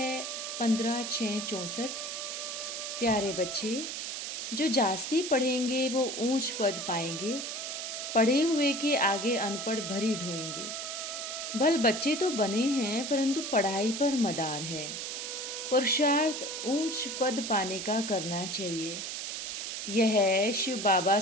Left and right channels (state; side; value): noise; right; hiss, 5 dB below the sound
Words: 15/6/64। प्यारे बच्चे, जो जास्ती पढ़ेंगे वो ऊंच पद पाएंगे, पढ़े हुए के आगे अनपढ़ भरी ढोएंगे। भल बच्चे तो बने हैं परंतु पढ़ाई पर मदार है। पुरुषार्थ ऊंच पद पाने का करना चाहिए। यह शिव बाबा